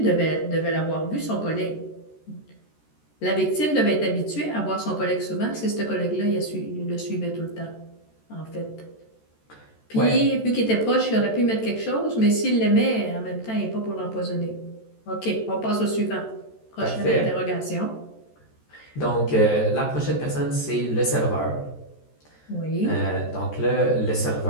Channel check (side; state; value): right; late; 13 ms